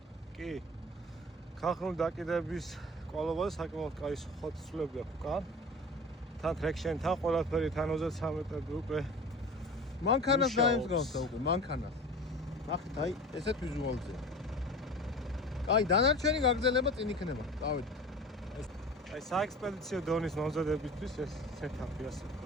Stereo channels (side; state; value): both; normal; correlation 0.37